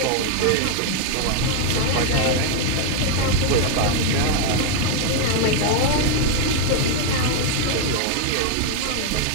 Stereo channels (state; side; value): different; both; correlation 0.00